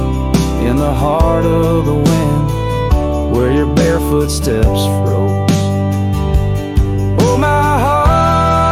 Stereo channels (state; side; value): identical; both; correlation 1.00